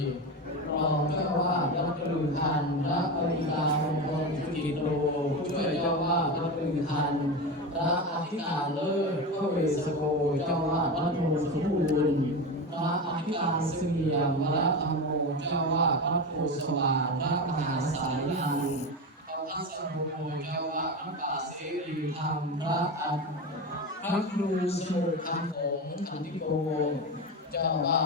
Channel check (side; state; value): both; normal; correlation 0.21